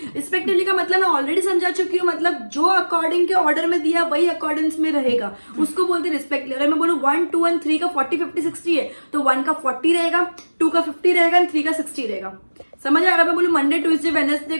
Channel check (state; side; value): inverted; both; correlation -1.00